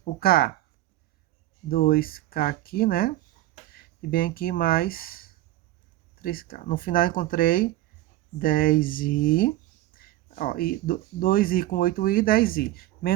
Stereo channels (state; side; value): quieter; left; 15.4 dB